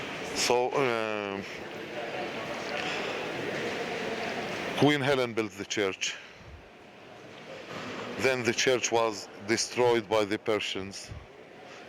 So Queen Helen built the church. Then the church was destroyed by the Persians.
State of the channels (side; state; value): both; identical; correlation 1.00